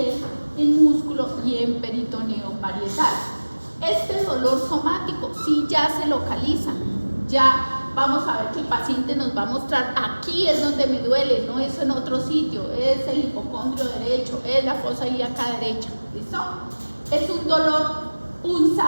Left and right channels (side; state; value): both; inverted; correlation -1.00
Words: en músculo y en peritoneo parietal. Este dolor somático sí ya se localiza, ya vamos a ver que el paciente nos va a mostrar aquí es donde me duele, no es en otro sitio, es el hipocondrio derecho, es la fosa ilíaca derecha, ¿listo? Es un dolor